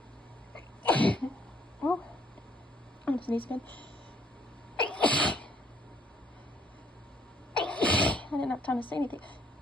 Oh, I'm gonna sneeze again. I didn't have time to say anything.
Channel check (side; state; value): both; normal; correlation 0.66